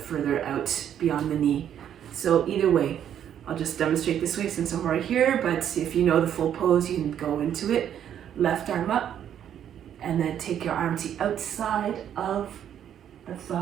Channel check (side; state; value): left; quieter; 9.8 dB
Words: out beyond the knee. So either way, I'll just demonstrate this way since I'm right here, but if you know the full pose, you can go into it. Left arm up, and then take your arm to the outside of the